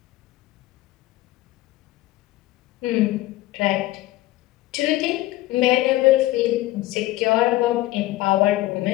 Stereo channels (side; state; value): right; quieter; 17.0 dB